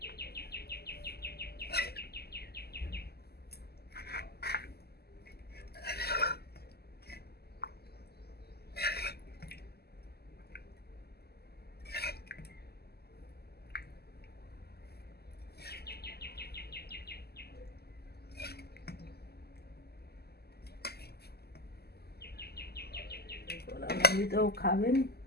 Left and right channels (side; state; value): right; late; 0.46 ms